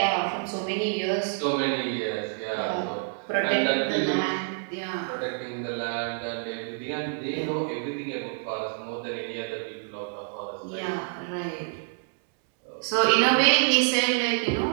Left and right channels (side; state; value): left; silent; 60 dB below the other